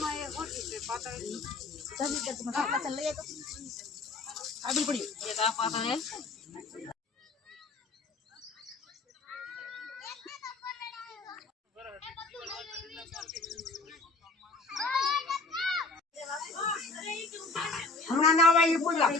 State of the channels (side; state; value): right; quieter; 3.7 dB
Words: એ ઓછી છે પાતળી જલ્દી કે તમે પાછળ લઈ આવો આડી પડી એક આ પાતળ હે હમણાં ના આવે એ પૂજા